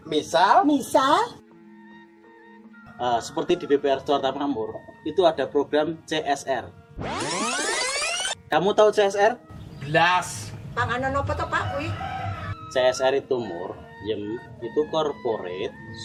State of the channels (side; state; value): both; identical; correlation 1.00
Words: Misal Seperti di BPR Jakarta Makmur, itu ada program CSR. Kamu tahu CSR? blas. Panganan apa to Pak kuwi? CSR itu itu Corporate